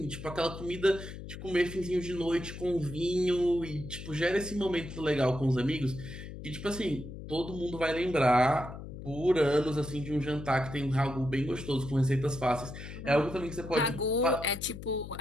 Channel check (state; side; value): noise; left; hum, 11 dB below the sound